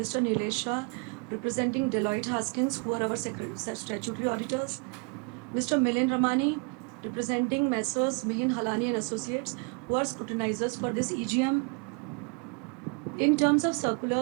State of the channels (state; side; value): quieter; left; 32.9 dB